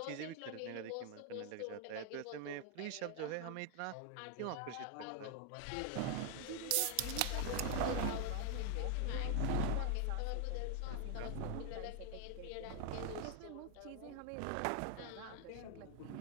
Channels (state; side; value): different; both; correlation 0.00